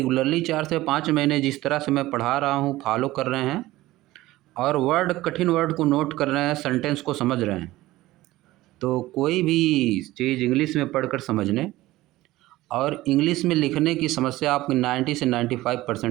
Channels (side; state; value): left; quieter; 17.3 dB